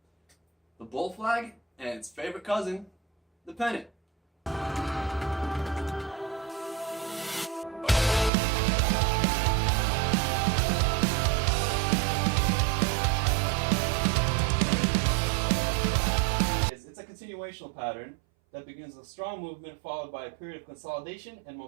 The bull flag and its favorite cousin, the pennant. It's a continuational pattern that begins with a strong movement followed by a period of consolidation and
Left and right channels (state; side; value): drops out; left; at 8.3 s